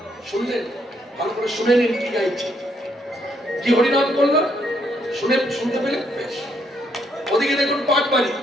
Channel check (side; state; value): both; normal; correlation 0.73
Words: শুনলেন? ভালো করে শুনে নিন কি গাইছে, কি হরিনাম করলো, শুনতে পেলে বেশ। ওদিকে দেখুন